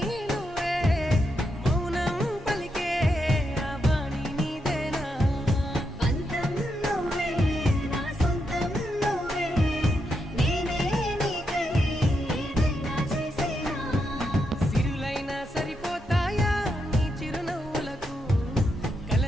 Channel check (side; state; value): both; normal; correlation 0.83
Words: నువ్వే మౌనం పలికే ఆ బాణి నీదేనా పంతం నువ్వే నా సొంతం నువ్వే నేనే నీకై ఏదైనా చేసేనా సిరులైనా సరిపోతాయా నీ చిరునవ్వులకు కల